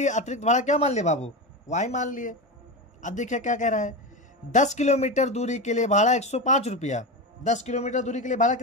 अतिरिक्त भाड़ा क्या मान लिए बाबू? y मान लिए। अब देखिए क्या कह रहा है, 10 किलोमीटर दूरी के लिए भाड़ा 105 रुपया। 10 किलोमीटर दूरी के लिए भाड़ा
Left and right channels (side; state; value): both; normal; correlation 0.19